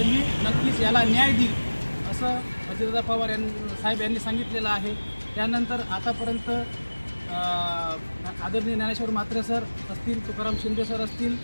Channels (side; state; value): both; inverted; correlation -1.00